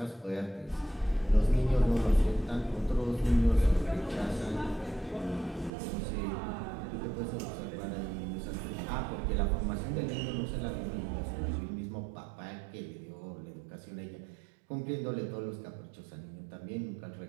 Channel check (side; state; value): left; drops out; at 5.7 s